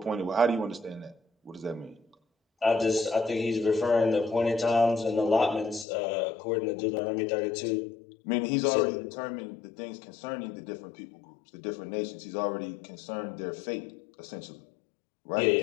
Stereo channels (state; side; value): drops out; right; at 5.9 s